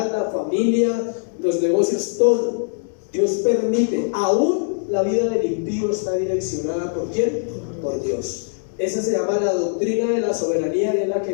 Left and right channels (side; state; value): right; silent; digital silence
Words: la familia, los negocios, todo Dios permite. Aún la vida del impío está direccionada ¿por quién? Por Dios. Esa se llama la doctrina de la soberanía, y es la